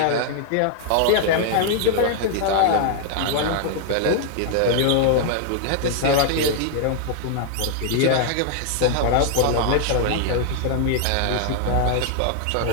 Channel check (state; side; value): different; both; correlation 0.00